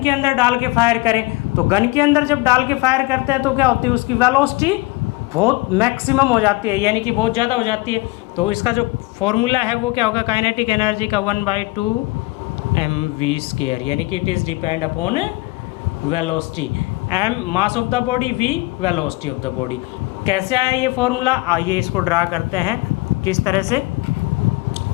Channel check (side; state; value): right; quieter; 22.7 dB